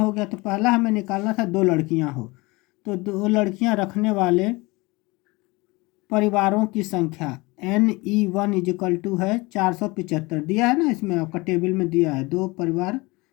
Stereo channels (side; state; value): right; quieter; 23.8 dB